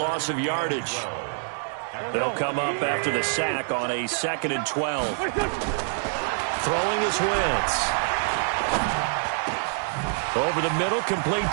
of yardage. They'll come up after the sack on a 2nd and 12. Throwing is Wentz. Over the middle, complete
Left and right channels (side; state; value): left; silent; digital silence